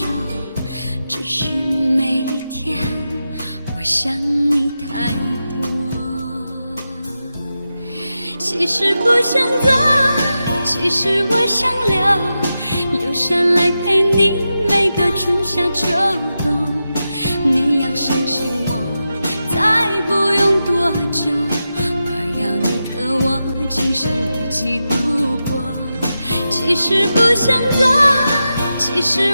只是每一天我想你太多。其实不想走，其实我想留下来陪你每个春夏秋冬。你要相信我，再不用多久，我要你和我今生一起度过。其实不想走，其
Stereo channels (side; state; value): both; inverted; correlation -0.90